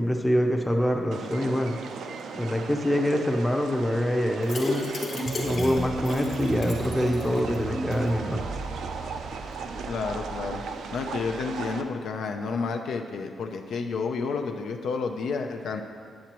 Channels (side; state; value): both; normal; correlation 0.88